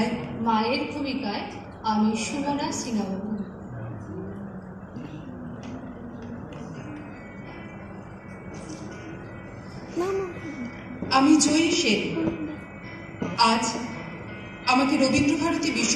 মায়ের ভূমিকায় আমি সুমনা সিংহাবাবু। আমি জয়ী সেন। আজ আমাকে রবীন্দ্রভারতী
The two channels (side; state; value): both; identical; correlation 1.00